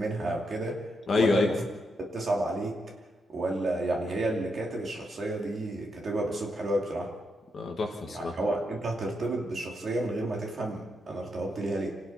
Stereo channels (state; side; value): normal; both; correlation 0.81